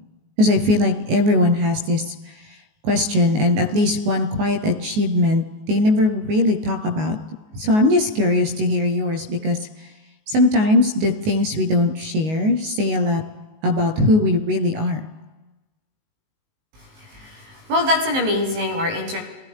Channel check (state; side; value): late; left; 19 ms